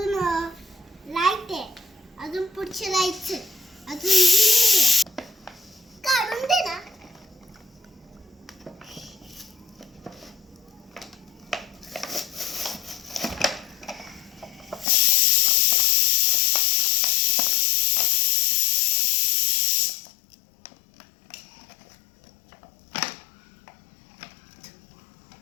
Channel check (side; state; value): right; drops out; at 14.9 s